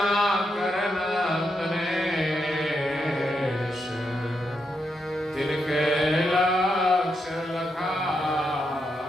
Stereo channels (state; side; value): normal; both; correlation 0.82